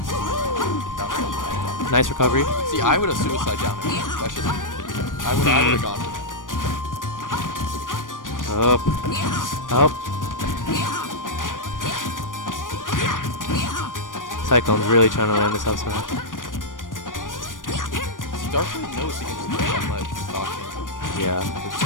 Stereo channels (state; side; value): late; right; 0.88 ms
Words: Nice recovery. See, I would have suicide down there. That's just, I would have gone. Up. Up. Cyclone's really trying to land this up smash. Darkblade knows he can just play on ledge. Yeah.